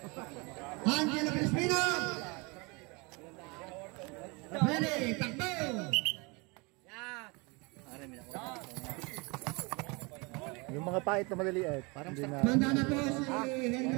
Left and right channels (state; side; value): quieter; left; 28.3 dB